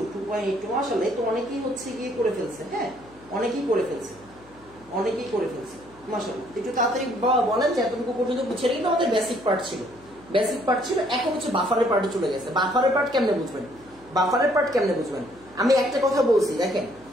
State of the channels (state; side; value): noise; left; hum, 26 dB below the sound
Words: আসলে তো অনেকেই হচ্ছে গিয়ে করে ফেলছে। হ্যাঁ, অনেকেই করে ফেলছে মাশাআল্লাহ। একটু তাড়াতাড়ি বলেন যে এতটুকু পর্যন্ত বুঝছে। কিন্তু আমাদের বেসিক পার্ট ছিল, এখন হচ্ছে বাফারের পার্টে চলে গেছে। বাফারের পার্ট কেমনে বুঝবেন? আমি একটা কথা বলছি, দেখেন,